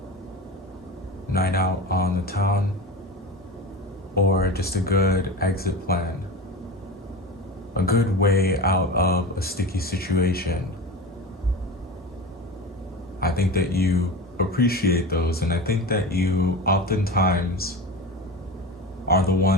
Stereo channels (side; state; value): both; normal; correlation 0.28